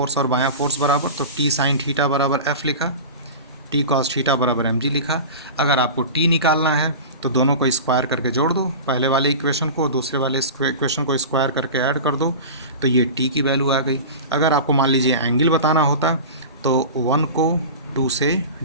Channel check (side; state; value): both; inverted; correlation -0.31